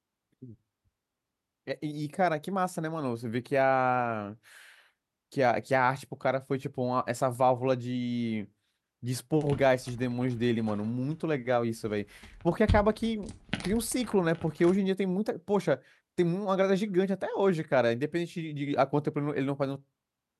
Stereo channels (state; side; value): identical; both; correlation 1.00